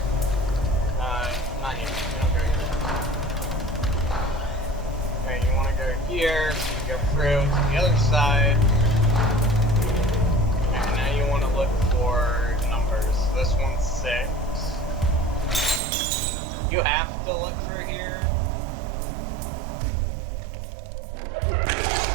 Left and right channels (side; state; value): left; drops out; at 15.8 s